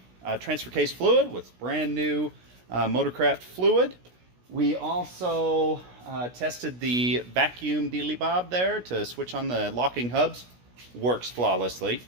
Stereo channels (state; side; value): late; left; 16 ms